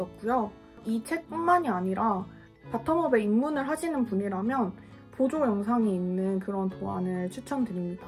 이 책뿐만이 아니라 바텀업에 입문을 하시는 분이라면 보조 영상이 있는 그런 도안을 추천드립니다.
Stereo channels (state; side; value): identical; both; correlation 1.00